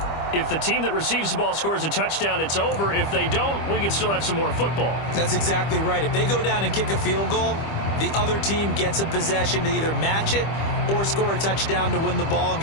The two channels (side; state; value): right; late; 25 ms